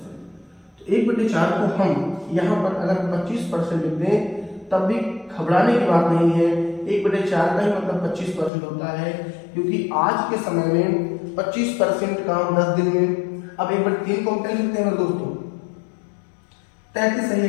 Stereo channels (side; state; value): right; drops out; at 8.5 s